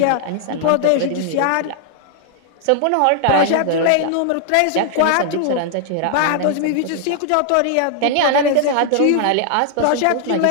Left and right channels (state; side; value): different; both; correlation 0.00